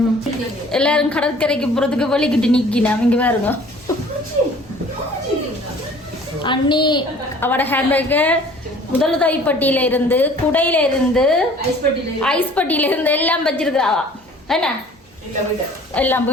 எல்லாரும் கடற்கரைக்கு போறதுக்கு வலிக்கிட்டு நிக்கினா இங்க பாருங்க. அண்ணி அவட ஹேண்ட்பேக்கு முதலுதவிப்பட்டியில இருந்து குடையில இருந்து ஐஸ் பட்டியில இருந்து எல்லாம் வச்சிருக்காவா. என்ன எல்லாம்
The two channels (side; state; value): both; normal; correlation 0.51